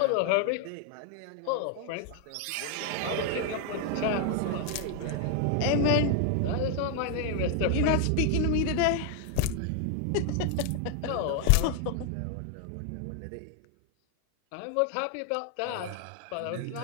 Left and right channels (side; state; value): both; different; correlation 0.00